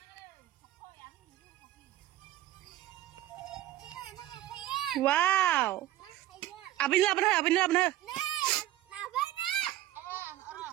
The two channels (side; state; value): left; quieter; 14.2 dB